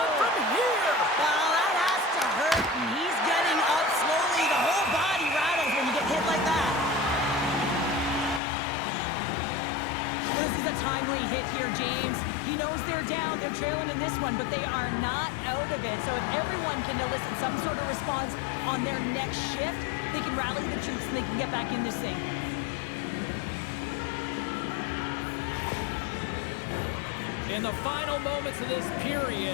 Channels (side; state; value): right; drops out; at 8.4 s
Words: from here! Well, that has to hurt, and he's getting up slowly. The whole body rattles when you get hit like that. This is a timely hit here, James. He knows they're down, they're trailing in this one, but they are not out of it. So if everyone can elicit some sort of response on their next shift, they can rally the troops and they can get back in this thing. In the final moments of this